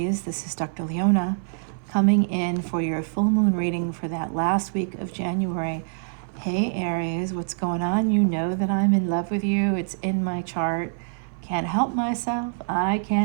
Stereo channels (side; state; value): left; silent; 60 dB below the other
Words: This is Dr. Leona coming in for your full moon reading for that last week of January. Hey Aries, what's going on? You know that I'm in love with you. It's in my chart. Can't help myself. I